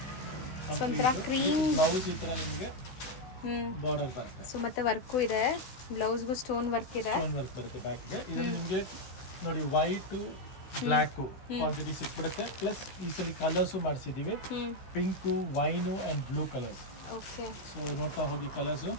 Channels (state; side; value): late; right; 16 ms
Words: ಸೊ ಒಂಥರ ಕ್ರೀಮ್ ಬ್ಲೌಸ್ ಈ ತರ ನಿಮಗೆ ಹ್ಞೂ. ಬಾರ್ಡರ್ ಬರುತ್ತೆ. ಸೊ ಮತ್ತೆ ವರ್ಕು ಇದೆ, ಬ್ಲೌಸ್ಗೂ ಸ್ಟೋನ್ ವರ್ಕ್ ಇದೆ. ಸ್ಟೋನ್ ವರ್ಕ್ ಬರುತ್ತೆ ಬ್ಯಾಕ್ಗೆ. ಇದು ನಿಮಗೆ ನೋಡಿ ವೈಟು ಬ್ಲ್ಯಾಕು ಕ್ವಾಂಟಿಟಿ ಸಿಕ್ಬಿಡುತ್ತೆ. ಪ್ಲಸ್ ಈ ಸಲ ಕಲರ್ಸು ಮಾಡಿಸಿದೀವಿ, pink, wine and blue colours. Okay, so ನೋಡ್ತಾ ಹೋಗಿ ಕಲರ್ಸು